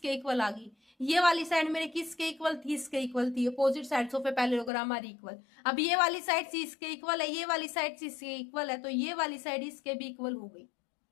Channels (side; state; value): right; drops out; at 4.7 s